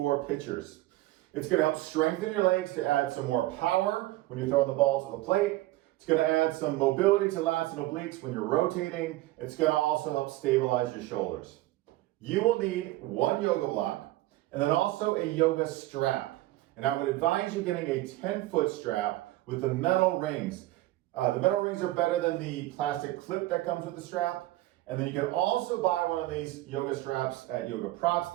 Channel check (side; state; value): left; quieter; 17.3 dB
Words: pitchers. It's going to help strengthen your legs to add some more power when you're throwing the ball to the plate. It's going to add some mobility to lats and obliques when you're rotating. It's going to also help stabilize your shoulders. You will need one yoga block and then also a yoga strap. And I would advise you getting a 10-foot strap with the metal rings. The metal rings are better than the plastic clip that comes with the strap. And then you can also buy one of these yoga straps at